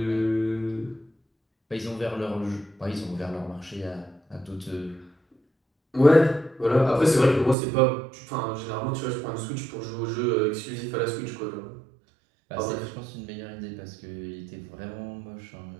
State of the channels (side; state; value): left; drops out; at 7.6 s